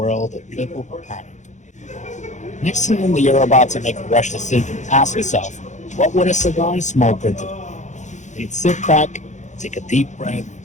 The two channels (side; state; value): right; late; 0.35 ms